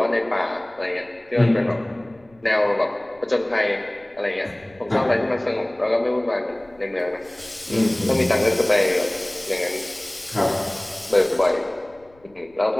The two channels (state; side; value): noise; left; rumble, 30 dB below the sound